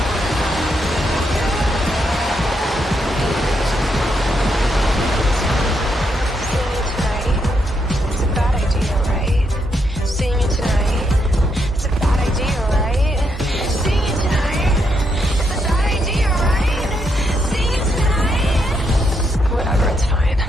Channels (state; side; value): normal; both; correlation 0.79